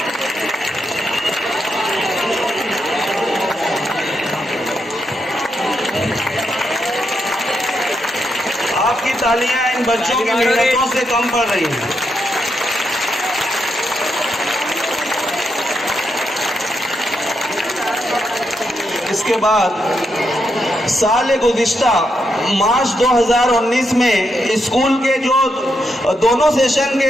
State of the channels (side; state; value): both; normal; correlation 0.82